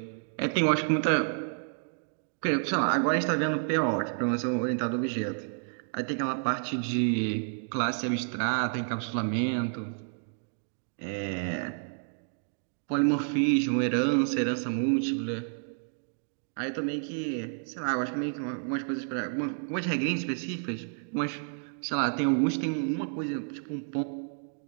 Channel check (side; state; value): left; silent; digital silence